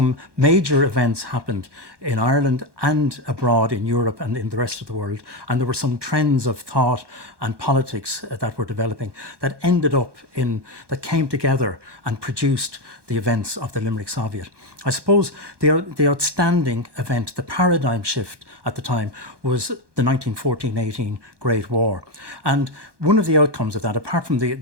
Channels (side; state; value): left; late; 1.2 ms